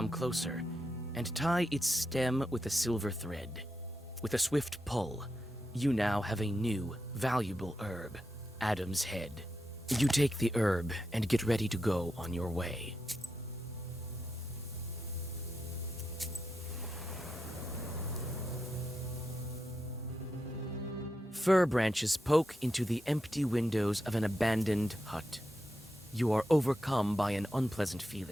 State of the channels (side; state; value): both; normal; correlation 0.87